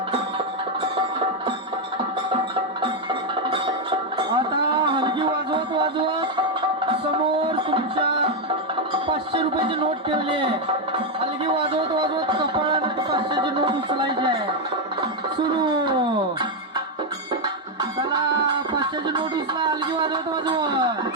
आता हलगी वाजवत वाजवत समोर तुमच्या 500 रुपयाची नोट ठेवली आहे. हलगी वाजवत वाजवत कपाळाने 500ची नोट उचलायची आहे. सुरू. चला 500ची नोट उचला हलगी वाजवत वाजवत.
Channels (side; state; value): both; normal; correlation 0.03